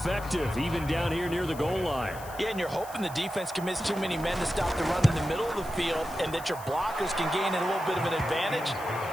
even down here near the goal line. Yeah, and you're hoping the defense commits too many men to stop the run in the middle of the field and that your blockers can gain a little bit of an advantage.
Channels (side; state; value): left; noise; hiss, 17 dB below the sound